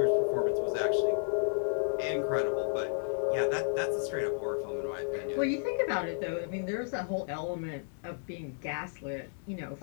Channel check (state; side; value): silent; right; digital silence